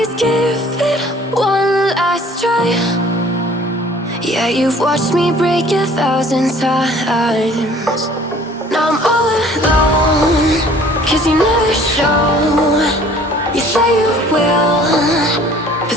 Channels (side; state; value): both; normal; correlation 0.52